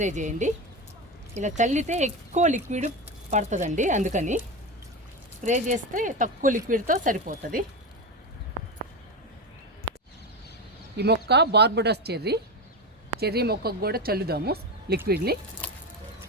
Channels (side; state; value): both; normal; correlation 0.19